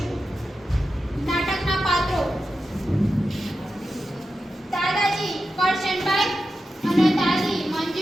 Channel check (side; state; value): both; normal; correlation 0.91